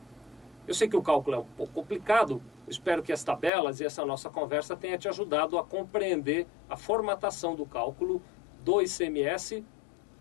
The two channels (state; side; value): drops out; right; at 3.5 s